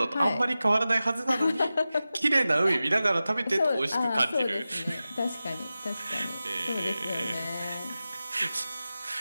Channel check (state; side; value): inverted; both; correlation -0.94